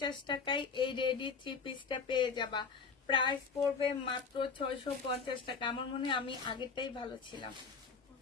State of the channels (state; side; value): quieter; right; 5.3 dB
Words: টাকায় এই রেডি 3 পিসটা পেয়ে যাবা। প্রাইস পড়বে মাত্র 650 টাকা। আমার মনে হয় আমি আগেরটাই ভালো ছিলাম।